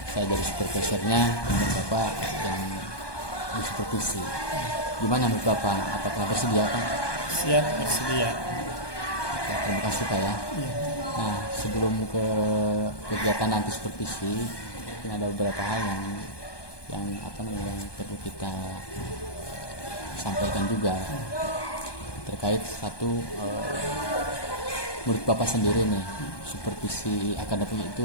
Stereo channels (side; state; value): right; late; 1.2 ms